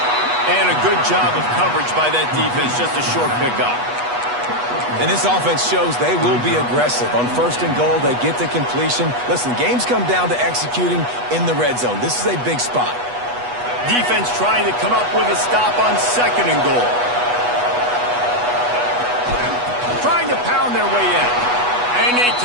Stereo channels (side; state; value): left; late; 8.2 ms